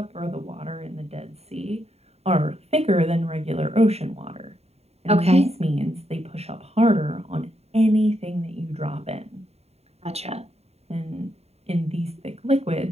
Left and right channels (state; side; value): late; left; 0.30 ms